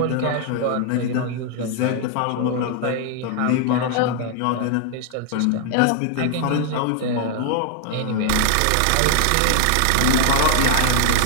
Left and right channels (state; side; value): different; both; correlation 0.00